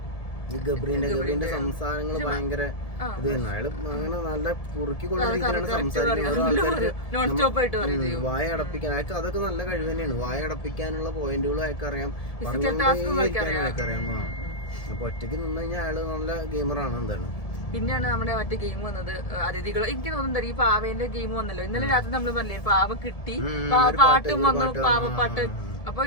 ഈ ഗബ്രീന്റെ സംസാരങ്ങൾ ഭയങ്കര ഇത് തന്നെ. അയാള് അങ്ങനെ നല്ല കുറുക്കിക്കൊള്ള രീതിയിലാണ് സംസാരിക്കുന്നത്. ആൾക്കാർക്ക് വായ അടപ്പിക്കാൻ അയാൾക്ക് അതൊക്കെ നല്ല കഴിവ് തന്നെയാണ്. വായ അടപ്പിക്കാനുള്ള പോയിന്റുകളും അയാൾക്ക് അറിയാം, പറഞ്ഞുകൊണ്ടേയിരിക്കാനും അയാൾക്ക് അറിയാം. അപ്പൊ ഒറ്റയ്ക്ക് നിന്ന് കഴിഞ്ഞാൽ അയാള് നല്ല ഗെയിമറാണ്. എന്താണ് പിന്നെയാണ് നമ്മുടെ മറ്റേ ഗെയിം വന്നത്, അതിഥികൾ. എനിക്ക് തോന്നുന്നുണ്ട് ഈ പാവേന്റെ ഗെയിം വന്നല്ലോ ഇന്നലെ രാത്രി. നമ്മൾ പറഞ്ഞില്ലേ പാവ കിട്ടി, പാട്ടും വന്നു, പാവപ്പാട്ട്. അപ്പൊ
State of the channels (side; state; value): right; late; 1.7 ms